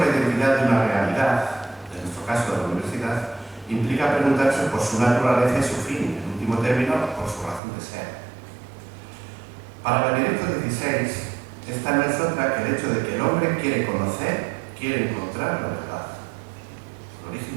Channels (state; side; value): drops out; left; at 7.6 s